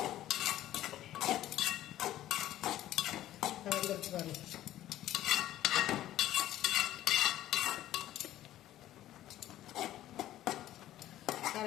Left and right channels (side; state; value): right; quieter; 13.5 dB